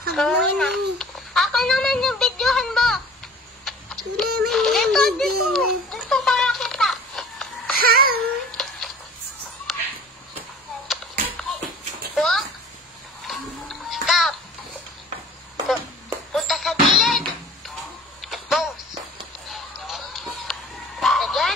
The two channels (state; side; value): normal; both; correlation 0.45